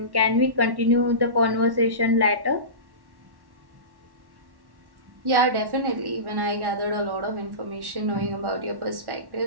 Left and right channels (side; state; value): left; late; 1.1 ms